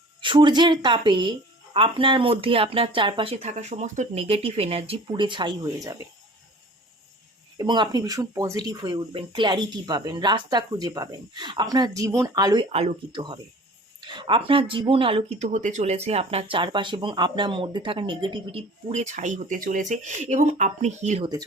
সূর্যের তাপে আপনার মধ্যে আপনার চারপাশে থাকা সমস্ত নেগেটিভ এনার্জি পুড়ে ছাই হয়ে যাবে এবং আপনি ভীষণ পজিটিভ হয়ে উঠবেন, ক্ল্যারিটি পাবেন, রাস্তা খুঁজে পাবেন, আপনার জীবন আলোয় আলোকিত হবে। আপনার জীবন আলোকিত হতে চলেছে, আপনার চারপাশে এবং আপনার মধ্যে থাকা নেগেটিভিটি পুড়ে ছাই হতে চলেছে এবং আপনি হিল হতে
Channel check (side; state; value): both; normal; correlation 0.45